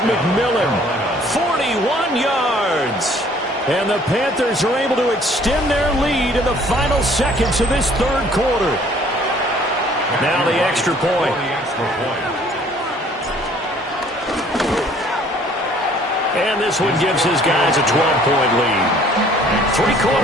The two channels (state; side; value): normal; both; correlation 0.57